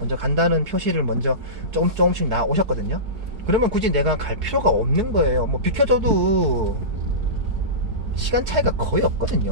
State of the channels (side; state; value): left; late; 4.7 ms